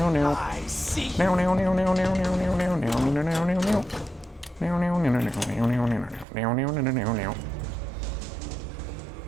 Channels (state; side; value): drops out; left; at 6.2 s